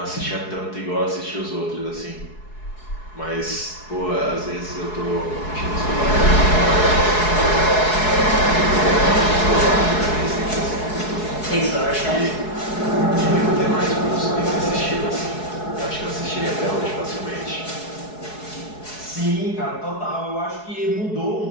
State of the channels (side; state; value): right; late; 4.7 ms